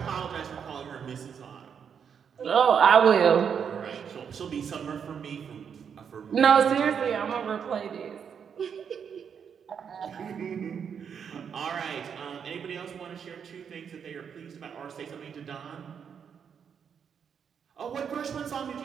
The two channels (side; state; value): left; quieter; 7.3 dB